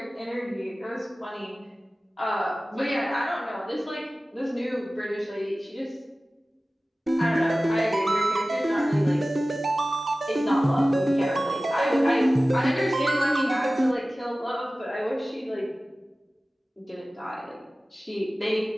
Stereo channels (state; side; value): normal; both; correlation 0.97